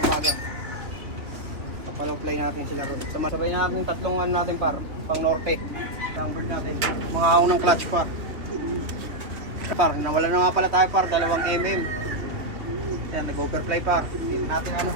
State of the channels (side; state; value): left; late; 2.9 ms